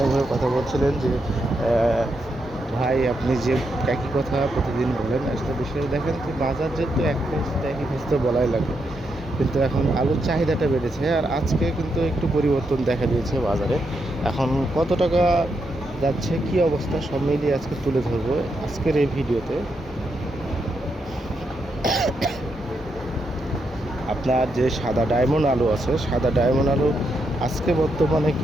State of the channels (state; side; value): normal; both; correlation 0.82